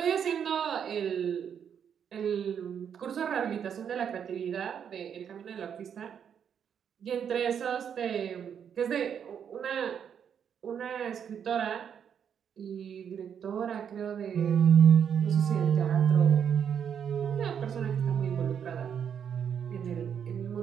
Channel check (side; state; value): left; quieter; 8.0 dB